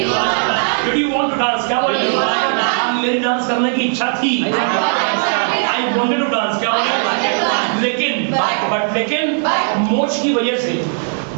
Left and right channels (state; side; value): silent; left; digital silence